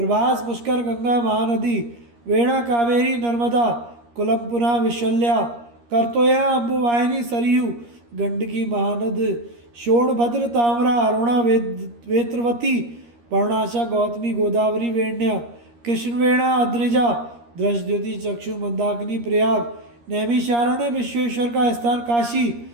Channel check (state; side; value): late; left; 13 ms